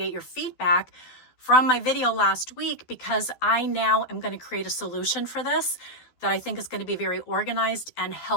your feedback from my video last week, because I now am going to create a solution for this that I think is going to be very organized and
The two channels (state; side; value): late; right; 12 ms